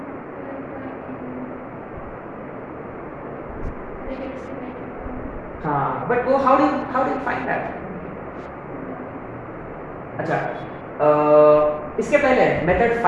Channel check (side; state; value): both; identical; correlation 1.00